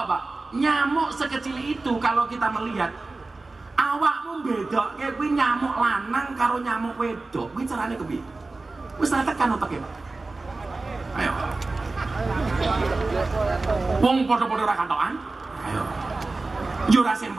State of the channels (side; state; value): left; quieter; 3.4 dB